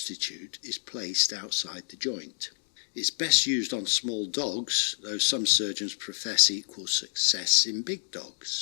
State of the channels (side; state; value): right; silent; digital silence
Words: is placed outside the joint. It's best used on small dogs, though some surgeons profess equal success in big